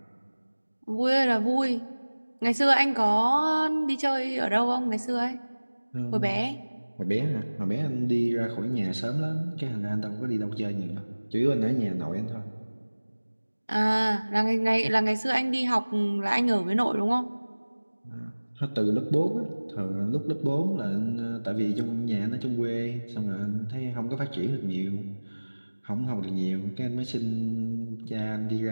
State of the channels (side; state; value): both; inverted; correlation -1.00